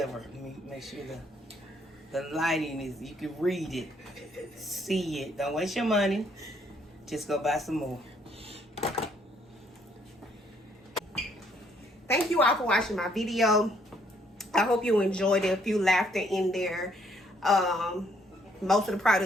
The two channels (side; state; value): both; normal; correlation 0.68